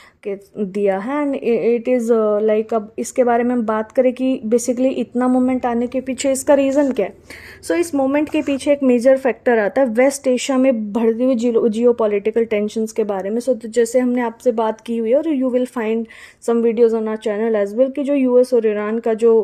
के दिया है। एंड इट इज़ लाइक, अब इसके बारे में हम बात करें कि बेसिकली इतना मोमेंट आने के पीछे इसका रीज़न क्या है। सो इस मोमेंट के पीछे एक मेजर फैक्टर आता है वेस्ट एशिया में बढ़ती हुई जियो पॉलिटिकल टेंशंस के बारे में। सो जैसे हमने आपसे बात की हुई है और you will find some videos on our channel as well कि जो यूएस और ईरान का जो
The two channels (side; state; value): both; identical; correlation 1.00